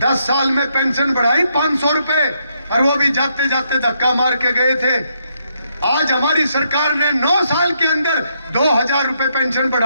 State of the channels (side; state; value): both; inverted; correlation -0.76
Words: साल में पेंशन बढ़ाई 500 रुपए, और वो भी जाते जाते धक्का मार के गए थे। आज हमारी सरकार ने 9 साल के अंदर 2000 रुपए पेंशन